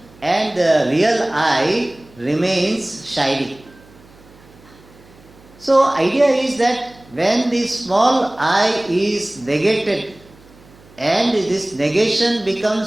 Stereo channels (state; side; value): noise; right; hum, 26 dB below the sound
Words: and the real I remains shining. So, idea is that when the small I is negated and this negation